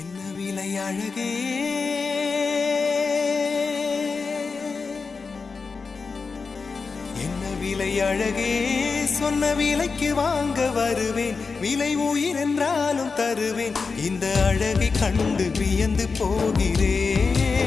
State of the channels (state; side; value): quieter; right; 4.7 dB